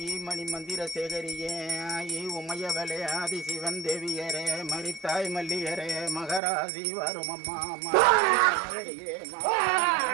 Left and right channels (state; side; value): drops out; left; at 6.4 s